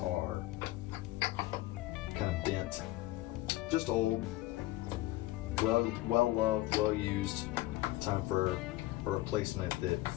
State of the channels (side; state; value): right; quieter; 17.6 dB